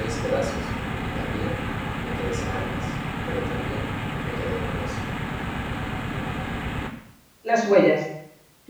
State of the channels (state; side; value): identical; both; correlation 1.00